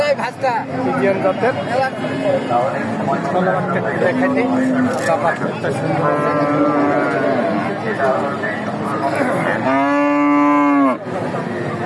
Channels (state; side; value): identical; both; correlation 1.00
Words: ভাস্তা ফিজিয়ান জাতের। দেখাই দিই। ব্যাপারটা সুন্দর।